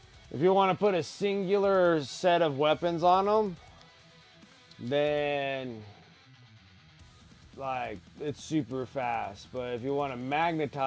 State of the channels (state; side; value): identical; both; correlation 1.00